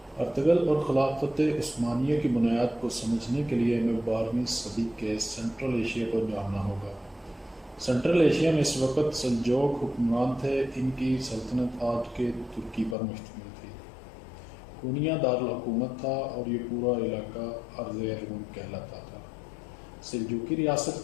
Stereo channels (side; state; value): right; drops out; at 13.0 s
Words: ارطغرل اور خلافت عثمانیہ کی بنیاد کو سمجھنے کے لیے ہمیں 12ویں صدی کے سینٹرل ایشیا کو جاننا ہوگا۔ سینٹرل ایشیا میں اس وقت سلجوق حکمران تھے۔ ان کی سلطنت آج کے ترکی پر مشتمل تھی۔ کونیا دارالحکومت تھا اور یہ پورا علاقہ ارض روم کہلاتا تھا۔ سلجوقی ریاست